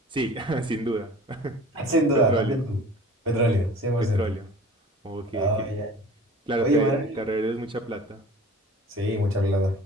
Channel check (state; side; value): normal; both; correlation 0.43